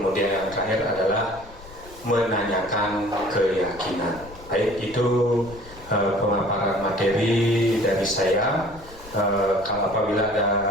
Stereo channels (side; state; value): left; noise; rumble, 19 dB below the sound